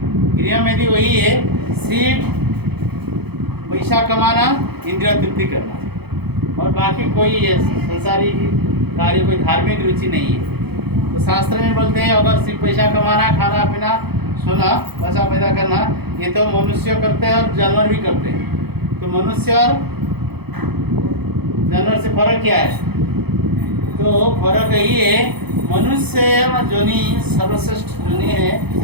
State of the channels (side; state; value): left; late; 0.97 ms